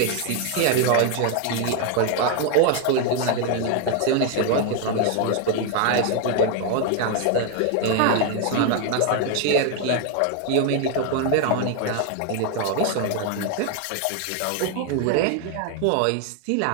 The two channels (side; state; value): both; different; correlation 0.01